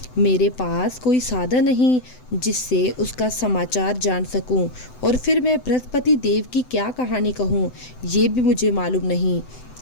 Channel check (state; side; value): late; right; 7.9 ms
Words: मेरे पास कोई साधन नहीं जिससे उसका समाचार जान सकूं, और फिर मैं बृहस्पति देव की क्या कहानी कहूं, ये भी मुझे मालूम नहीं।